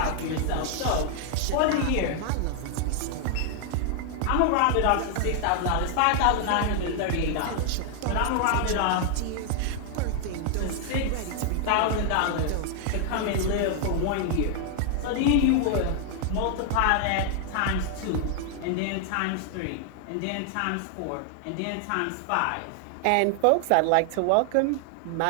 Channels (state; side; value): different; both; correlation 0.00